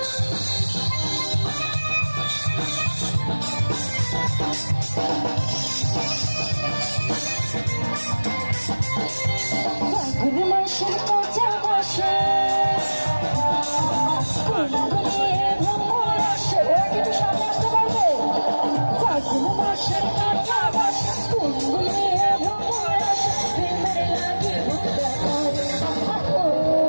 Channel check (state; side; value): inverted; both; correlation -1.00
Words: ফাগুন মাসের কাঁচা বাসে গুনগুনিয়ে ভ্রমর আসে। ওরা কিন্তু সামনে আসতে পারবে। ফাগুন মাসের কাঁচা বাসে গুনগুনিয়ে ভ্রমর আসে। প্রেমের লাগে বুক দেখায় ও